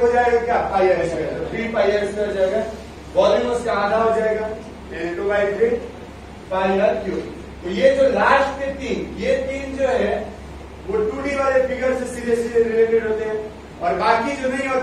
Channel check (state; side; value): identical; both; correlation 1.00